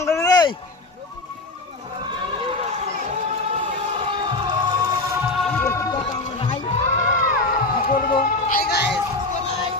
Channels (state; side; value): quieter; right; 3.0 dB